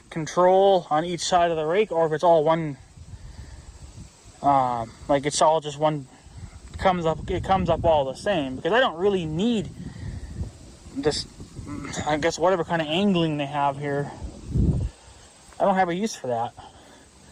control on each side of the rake, or if it's all one, like it's all just one, it comes up all the same. Because I don't really need this, I guess, whatever kind of angling they have here. I don't have a use for that.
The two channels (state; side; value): identical; both; correlation 1.00